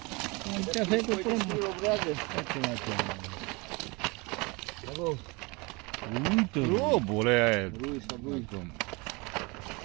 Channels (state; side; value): quieter; left; 27.2 dB